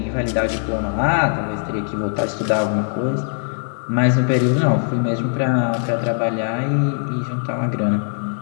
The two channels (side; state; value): right; silent; 59 dB below the other